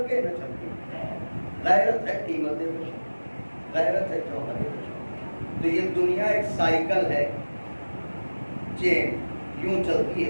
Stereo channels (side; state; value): both; inverted; correlation -1.00